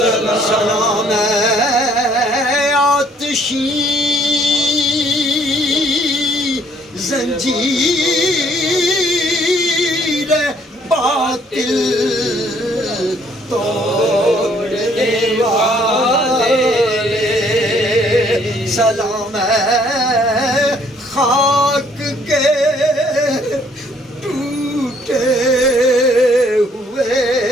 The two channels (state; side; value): normal; both; correlation 0.63